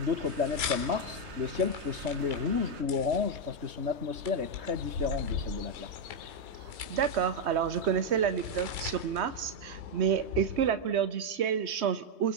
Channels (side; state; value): left; late; 3.2 ms